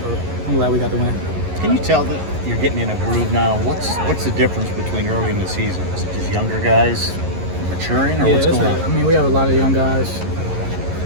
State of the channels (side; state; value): left; late; 11 ms